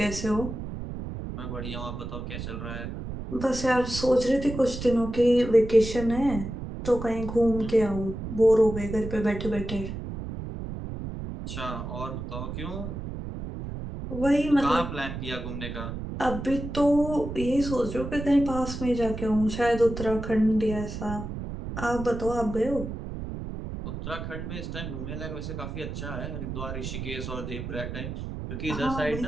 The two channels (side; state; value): right; noise; rumble, 7 dB below the sound